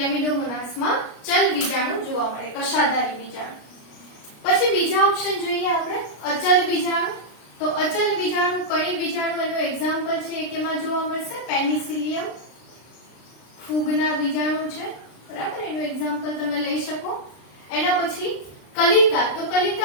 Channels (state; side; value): late; right; 33 ms